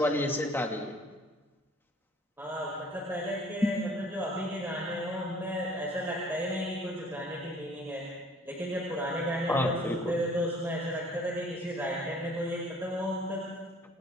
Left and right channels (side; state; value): both; normal; correlation 0.54